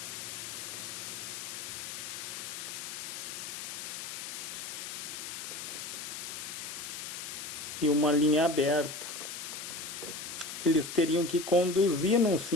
E uma linha aberta. Eles teriam que conduzir num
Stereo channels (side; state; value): left; noise; hiss, 7 dB below the sound